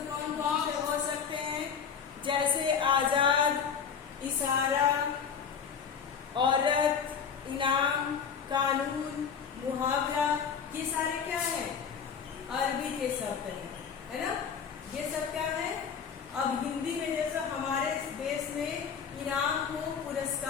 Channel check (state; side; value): quieter; right; 6.8 dB